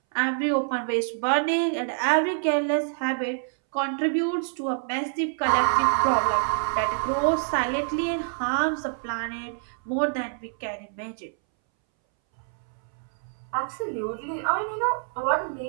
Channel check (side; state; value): left; silent; 61 dB below the other